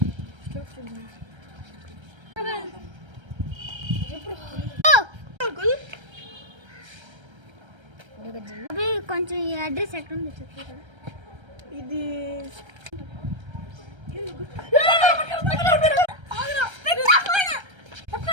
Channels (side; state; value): left; late; 1.3 ms